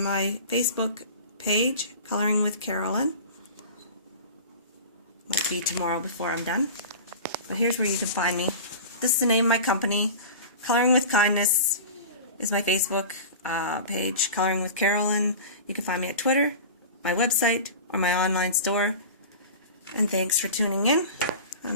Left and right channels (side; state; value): both; inverted; correlation -0.34